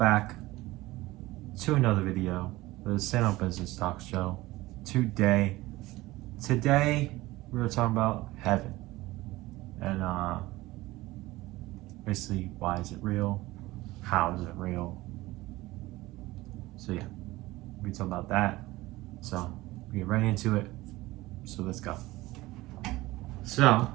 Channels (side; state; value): left; quieter; 18.9 dB